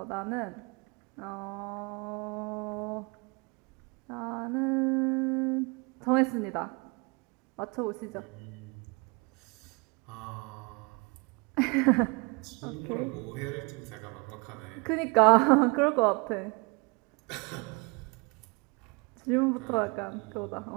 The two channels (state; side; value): quieter; left; 30.1 dB